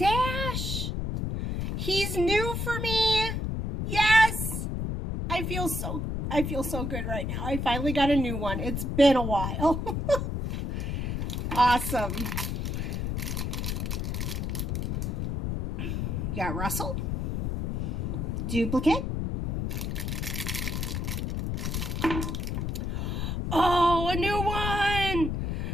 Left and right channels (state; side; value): noise; left; rumble, 1 dB below the sound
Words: He's new for me. Yes. I feel so good right now. I finally got a new one. It's been a while. Awesome. You got Russell. Duplicate. Oh, a new one.